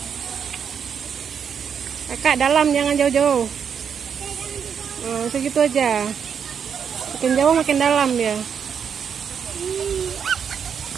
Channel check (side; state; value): left; quieter; 7.3 dB